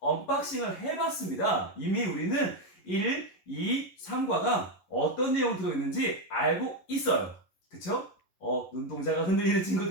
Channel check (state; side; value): late; right; 11 ms